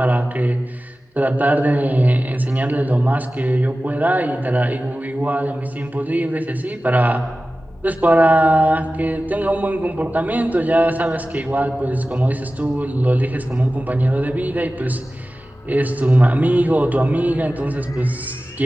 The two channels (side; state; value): both; normal; correlation 0.95